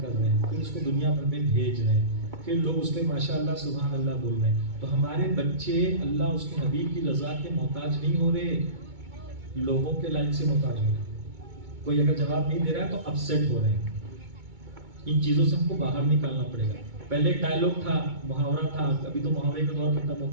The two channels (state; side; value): late; left; 2.2 ms